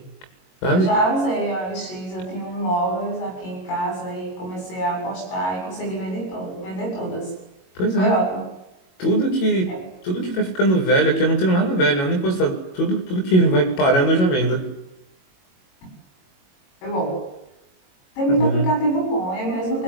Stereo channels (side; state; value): right; late; 22 ms